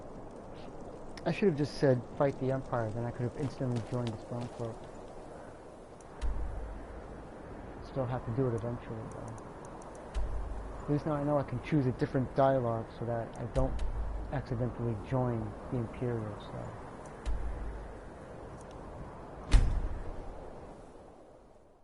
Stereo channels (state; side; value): identical; both; correlation 1.00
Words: I should have just said, fight the Empire, then I could have instantly joined the Stormcloak. Still have to do it eventually, though. At least now I know I can choose a different dialogue so that I don't accidentally join the Imperial side.